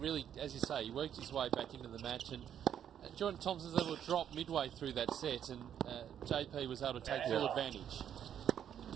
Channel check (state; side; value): quieter; left; 9.5 dB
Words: as you say, he worked his way back into the match, and Jordan Thompson's able to drop midway through that set, and JP was able to take full advantage.